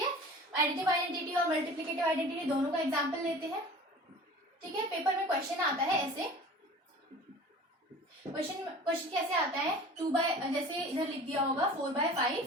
एडिटिव आइडेंटिटी और मल्टीप्लिकेटिव आइडेंटिटी दोनों का एग्जांपल लेते हैं। ठीक है, पेपर में क्वेश्चन आता है ऐसे, क्वेश्चन कैसे आता है? जैसे इधर लिख दिया होगा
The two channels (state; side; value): normal; both; correlation 0.42